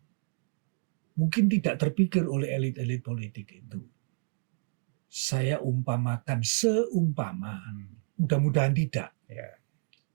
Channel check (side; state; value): left; silent; digital silence